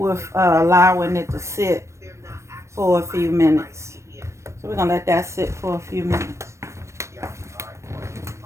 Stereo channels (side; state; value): left; late; 0.14 ms